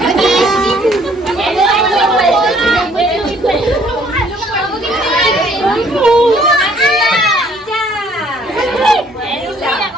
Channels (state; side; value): normal; both; correlation 0.61